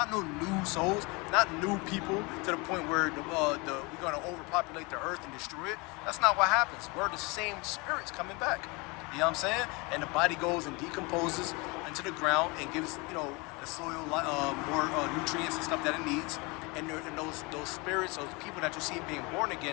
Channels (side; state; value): right; quieter; 27.3 dB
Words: no new souls, not new people to the point where we're going to overpopulate the earth and destroy it. That's not what happens. We're the same spirits coming back. You know what I'm saying? And the body goes and decomposes into the ground and gives, the soil more nutrients and stuff that it needs. And those spirits, those people that you see being born